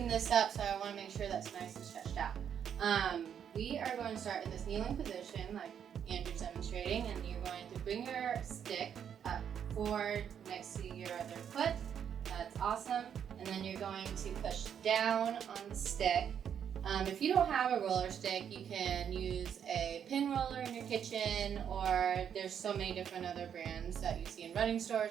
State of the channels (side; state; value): left; quieter; 8.4 dB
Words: this up, so I want to make sure that's nice and stretched out. We are going to start in this kneeling position like Andrew's demonstrating, and you're going to bring your stick up forward next to your other foot. That's awesome. And then you're going to push down on the stick. If you don't have a roller stick, you can use a pin roller in your kitchen, or there's so many different other brands that you see in running